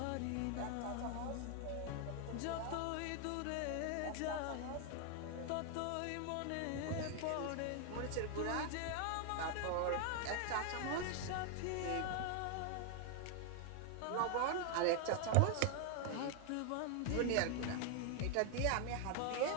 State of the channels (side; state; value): both; different; correlation 0.00